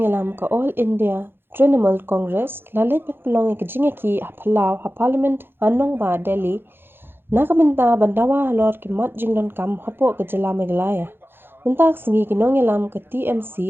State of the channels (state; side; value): late; left; 0.10 ms